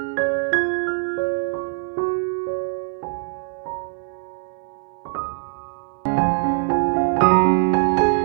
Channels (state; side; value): silent; left; 60 dB below the other